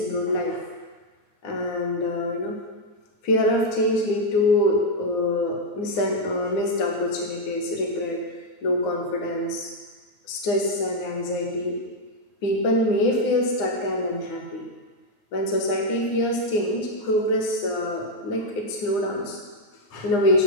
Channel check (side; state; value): right; late; 9.7 ms